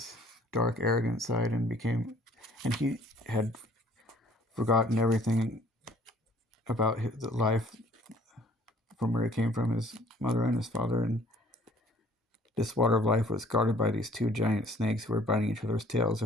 dark, arrogant side and he had forgotten everything about his life from where he came from, his mother and his father. And this water of life was guarded by these two giant snakes who were biting each other's tails.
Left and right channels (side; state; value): both; normal; correlation 0.57